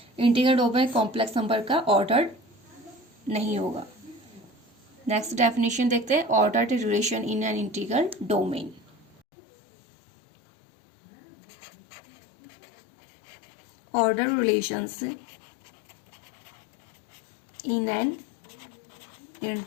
Integral domain complex number का ऑर्डर नहीं होगा। नेक्स्ट डेफिनेशन देखते हैं ordered relation in an integral domain. Order relations in an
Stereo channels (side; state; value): right; drops out; at 9.2 s